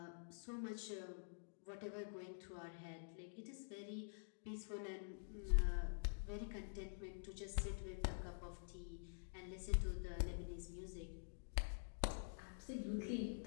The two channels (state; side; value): silent; right; digital silence